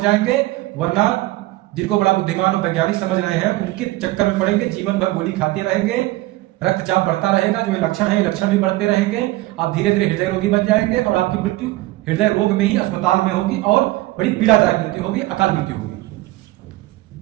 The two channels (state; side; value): quieter; left; 18.5 dB